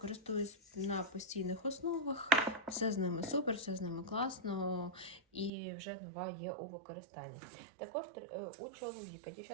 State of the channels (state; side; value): drops out; left; at 5.5 s